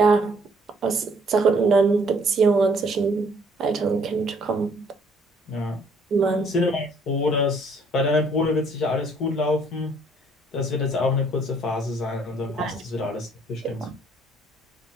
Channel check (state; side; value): normal; both; correlation 0.62